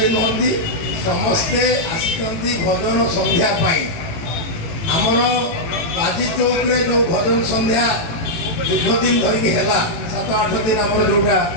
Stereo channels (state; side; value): late; right; 18 ms